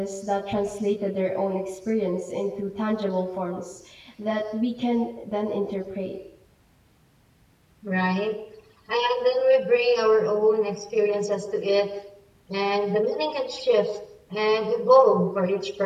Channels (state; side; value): identical; both; correlation 1.00